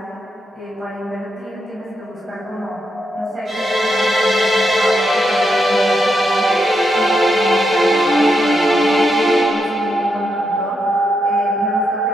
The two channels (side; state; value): both; normal; correlation 0.82